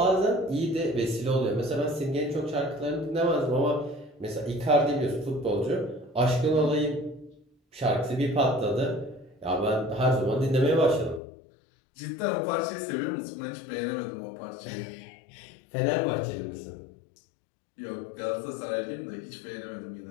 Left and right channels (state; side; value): drops out; right; at 11.2 s